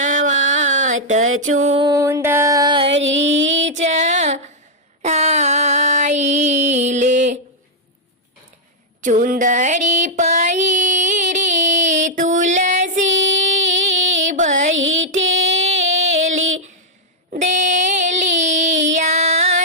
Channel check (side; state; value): both; normal; correlation -0.03